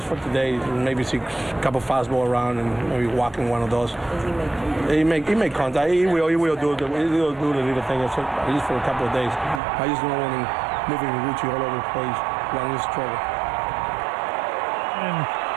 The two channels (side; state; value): left; drops out; at 9.6 s